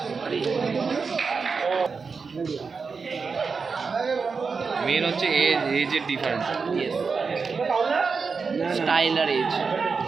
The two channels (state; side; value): quieter; left; 5.0 dB